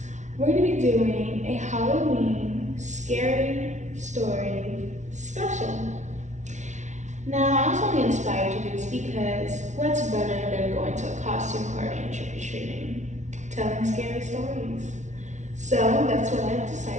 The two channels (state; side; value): late; left; 0.34 ms